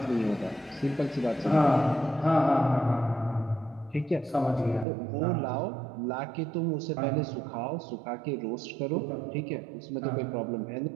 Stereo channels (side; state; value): left; drops out; at 4.9 s